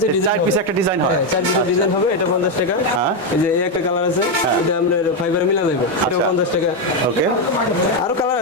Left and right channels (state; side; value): normal; both; correlation 0.06